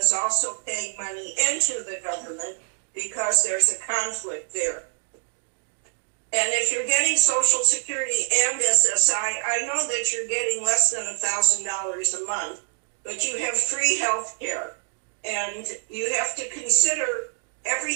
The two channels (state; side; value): silent; left; digital silence